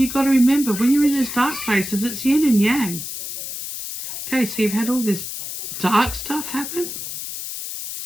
got to remember, when you're in those dark places, it's yin and yang. Okay, so you've had all this dark stuff happen.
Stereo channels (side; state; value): left; noise; hiss, 7 dB below the sound